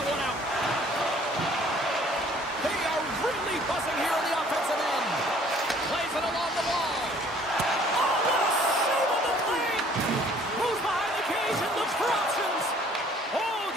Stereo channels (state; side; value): normal; both; correlation 0.56